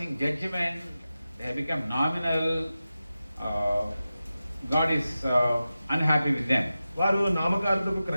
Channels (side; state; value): both; inverted; correlation -0.93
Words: judgment, they have become nominal. God is unhappy with them. వారు నామకార్థపు